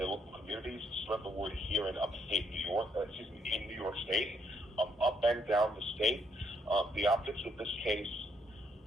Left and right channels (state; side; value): normal; both; correlation 0.72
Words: local communities. Spread the word here in upstate New York. In New York State, up and down the state. The optics of this case